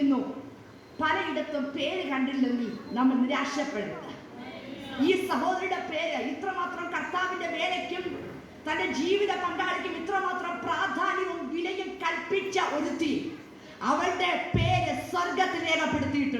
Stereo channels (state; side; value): identical; both; correlation 1.00